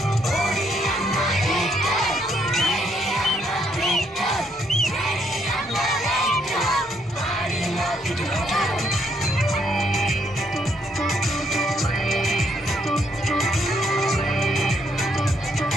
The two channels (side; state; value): both; normal; correlation 0.72